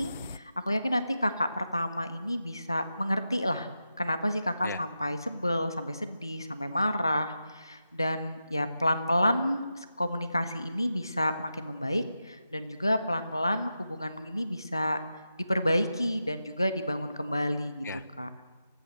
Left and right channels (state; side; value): inverted; both; correlation -0.89